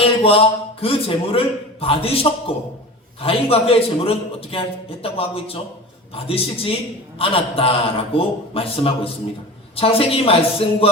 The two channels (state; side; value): normal; both; correlation 0.33